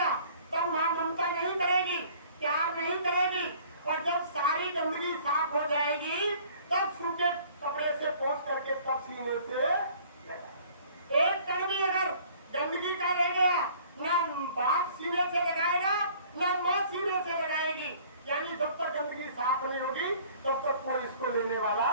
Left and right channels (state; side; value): inverted; both; correlation -0.53